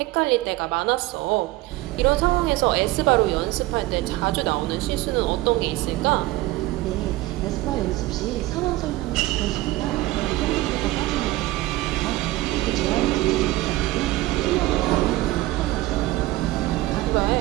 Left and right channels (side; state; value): left; quieter; 18.1 dB